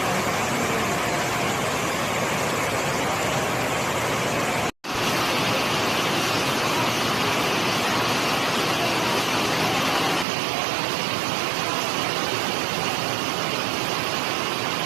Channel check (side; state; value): left; drops out; at 10.2 s